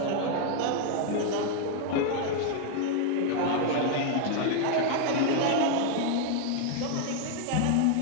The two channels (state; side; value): different; both; correlation 0.00